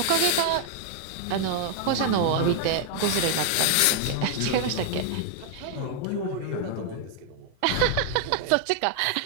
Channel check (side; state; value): both; different; correlation 0.00